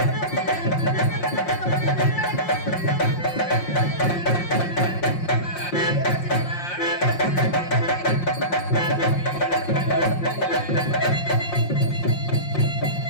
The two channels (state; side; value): late; right; 5.6 ms